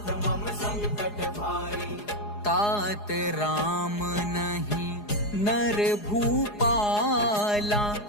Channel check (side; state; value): right; late; 4.8 ms